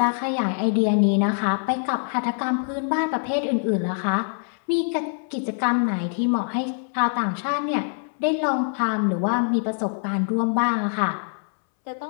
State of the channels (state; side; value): silent; right; 63 dB below the other